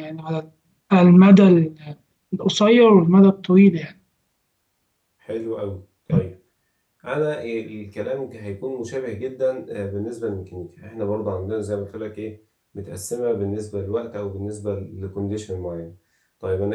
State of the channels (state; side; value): identical; both; correlation 1.00